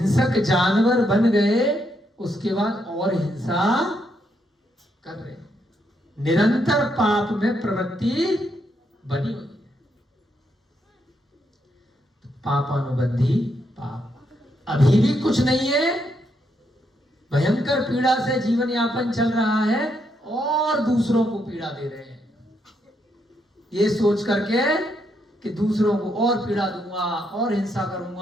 जानवर बन गए, उसके बाद और हिंसा कर रहे हैं, निरंतर पाप में प्रवृत्ति बनी हुई है। पापानुबंधी पाप, अभी भी कुछ नहीं है, भयंकर पीड़ा से जीवन यापन चल रहा है और दूसरों को पीड़ा दे रहे हैं, ये सोच करके कि दूसरों को और पीड़ा दूंगा, और हिंसा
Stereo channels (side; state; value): both; normal; correlation 0.78